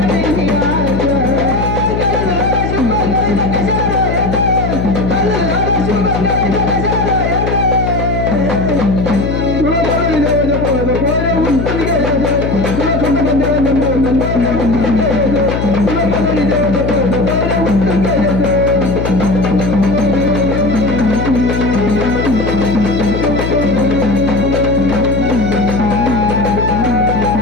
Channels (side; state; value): left; noise; hum, 2 dB below the sound